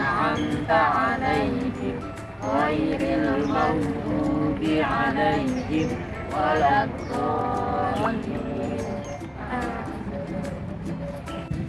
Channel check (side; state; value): both; identical; correlation 1.00